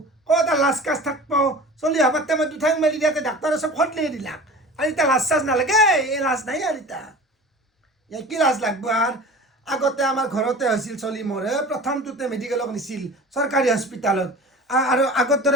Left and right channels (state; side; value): normal; both; correlation 0.38